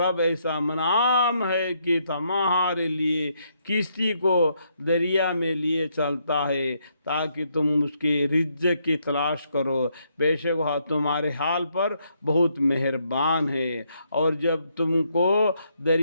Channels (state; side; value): inverted; both; correlation -0.75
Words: ایسا منعم ہے کہ تمہارے لیے کشتی کو دریا میں لیے چلتا ہے تاکہ تم اس کے رزق کی تلاش کرو، بے شک وہ تمہارے حال پر بہت مہربان ہے۔ اور جب تم کو